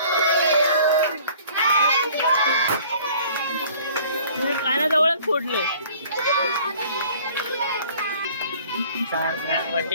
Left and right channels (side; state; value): both; inverted; correlation -0.52